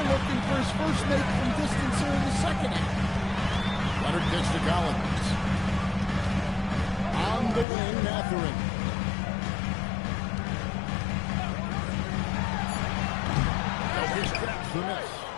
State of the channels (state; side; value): drops out; right; at 7.7 s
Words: looking for his first make from distance here in the second half. Leonard gets to Collins. On the wing, Mathurin. Jokic traps the miss.